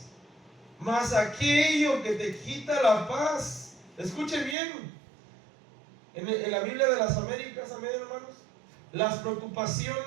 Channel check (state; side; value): drops out; left; at 4.5 s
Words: mas aquello que te quita la paz. Escuche bien, en la Biblia de las Américas, amén, hermanos, las